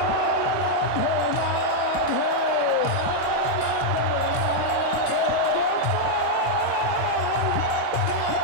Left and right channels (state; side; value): different; both; correlation -0.01